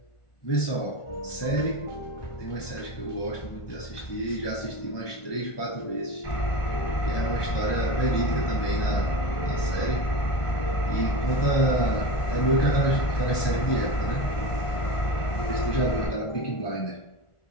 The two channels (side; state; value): right; late; 1.4 ms